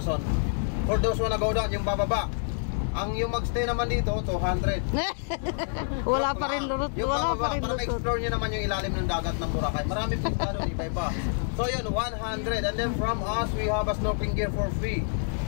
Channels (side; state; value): right; silent; digital silence